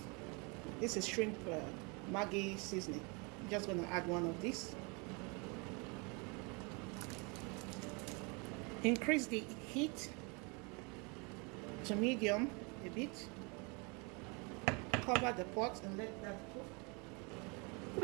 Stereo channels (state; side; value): quieter; left; 31.1 dB